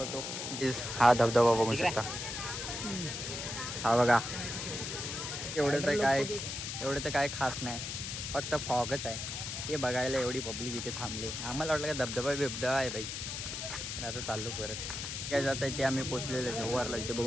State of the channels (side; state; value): left; noise; hiss, 5 dB below the sound